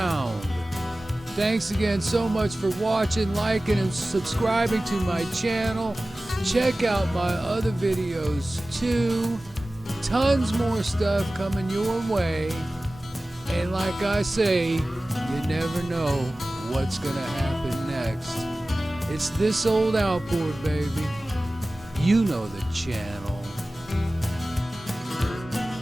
Thanks again so much for watching, liking, and subscribing to my channel. Check out my other videos too. Tons more stuff coming your way. And like I say, you never know what's gonna happen next. It's this old outboard, baby. You know the channel.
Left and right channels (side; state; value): both; normal; correlation 0.97